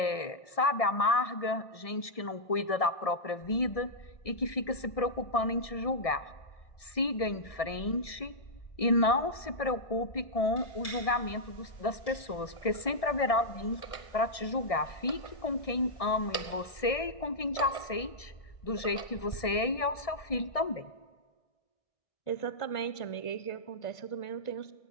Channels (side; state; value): right; late; 1.7 ms